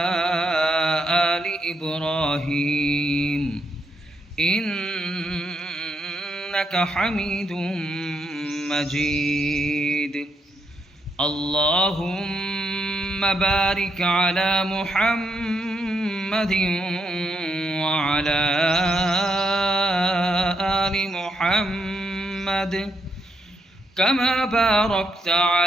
آل إبراهيم إنك حميد مجيد. اللهم بارك على محمد وعلى آل محمد كما باركت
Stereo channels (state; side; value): normal; both; correlation 0.79